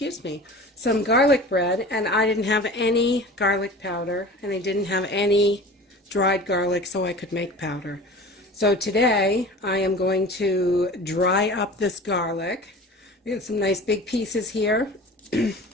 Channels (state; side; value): normal; both; correlation 0.38